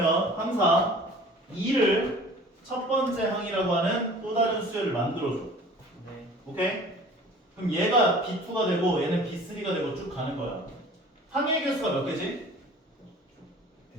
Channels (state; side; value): normal; both; correlation 0.46